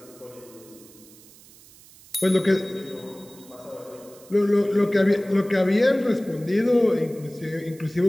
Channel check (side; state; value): right; noise; hiss, 23 dB below the sound